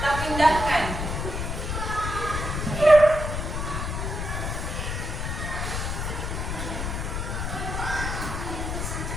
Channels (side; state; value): left; noise; rumble, 3 dB below the sound